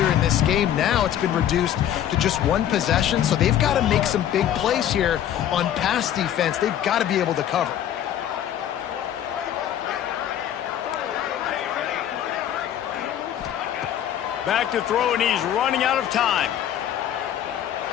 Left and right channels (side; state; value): right; quieter; 10.7 dB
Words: in this game. Now it's been reduced to just one possession, so they've got to make some big plays here on pass defense. They've got to be able to cover. Back to throw, and he's running out of time.